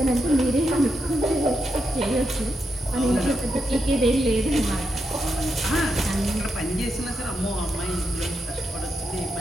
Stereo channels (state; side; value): normal; both; correlation 0.84